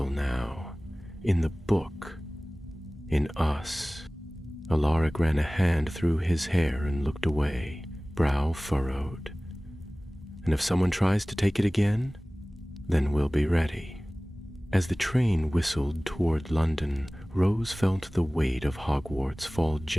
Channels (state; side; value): normal; both; correlation 0.98